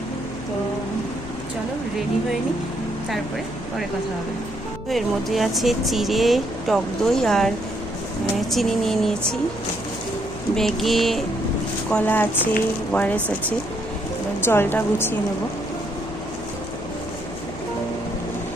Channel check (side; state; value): left; noise; hum, 13 dB below the sound